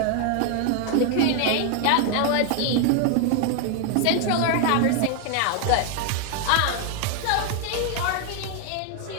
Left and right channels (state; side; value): different; both; correlation 0.00